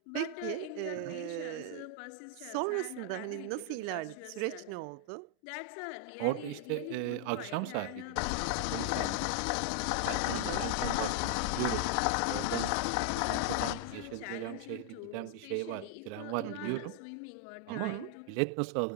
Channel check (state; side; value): different; both; correlation 0.00